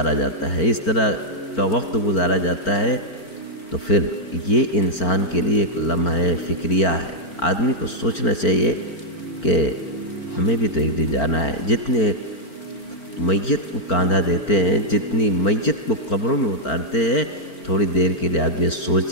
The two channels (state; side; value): late; right; 4.4 ms